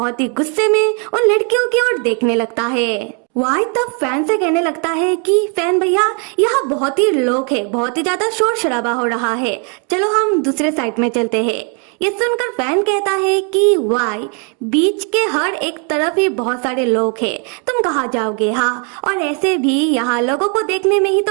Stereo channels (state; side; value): quieter; left; 38.0 dB